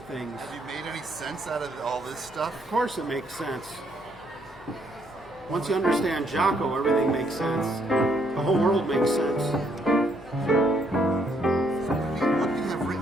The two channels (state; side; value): noise; left; hum, 23 dB below the sound